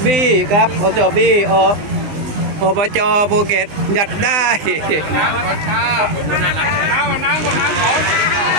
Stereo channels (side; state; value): left; late; 20 ms